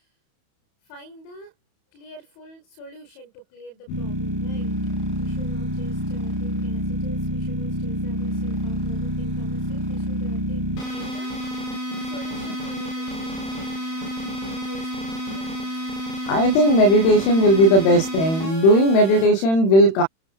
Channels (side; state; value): right; late; 31 ms